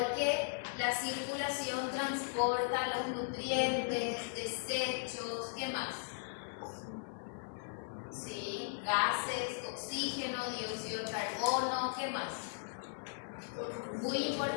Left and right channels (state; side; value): silent; right; 53 dB below the other